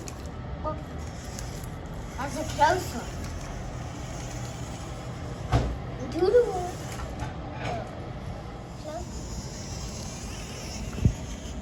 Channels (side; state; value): both; identical; correlation 1.00